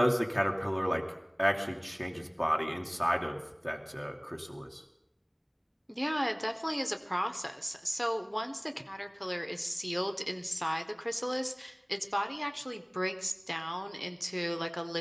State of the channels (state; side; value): identical; both; correlation 1.00